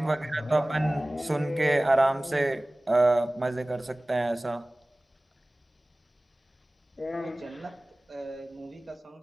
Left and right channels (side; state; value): both; normal; correlation 0.98